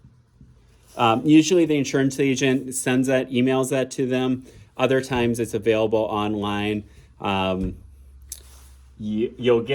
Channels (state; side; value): identical; both; correlation 1.00